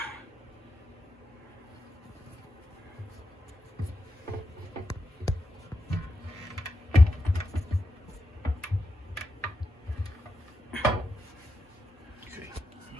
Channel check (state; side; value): normal; both; correlation 0.87